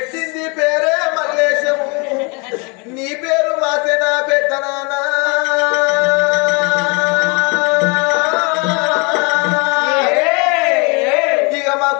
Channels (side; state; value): right; quieter; 31.5 dB